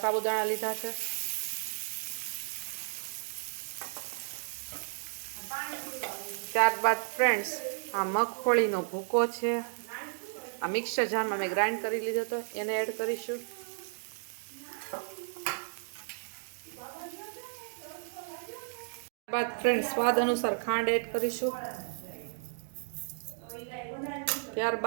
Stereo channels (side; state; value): left; silent; digital silence